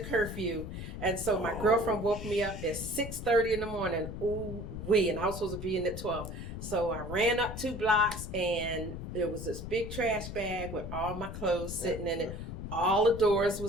and so my girlfriend woke me up at 6:30 in the morning. Ooh wee, and I was supposed to be in at 12. So I ran up 2 blocks, and there was this big trash bag with all my clothes sitting in it. All the doors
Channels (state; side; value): noise; left; rumble, 8 dB below the sound